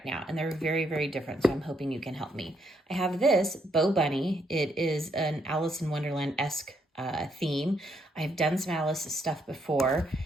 now, and they're very, very different. So I'm hoping you can help me. I have this Bow Bunny. It is an Alice in Wonderland-esque theme. I've done some Alice stuff before.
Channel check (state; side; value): normal; both; correlation 0.75